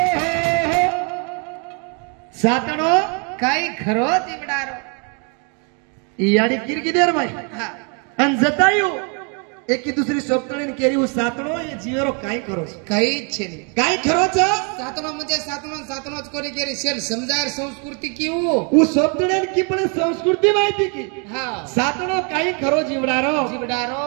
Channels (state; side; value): quieter; left; 36.6 dB